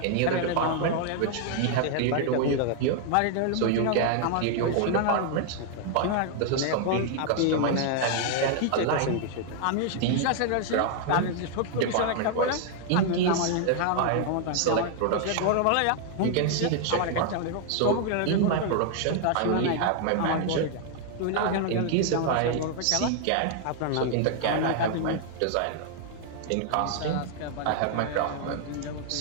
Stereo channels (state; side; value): different; both; correlation 0.00